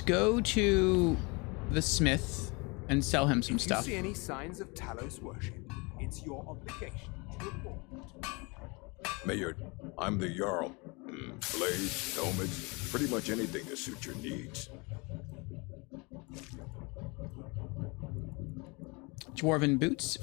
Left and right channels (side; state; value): right; quieter; 28.5 dB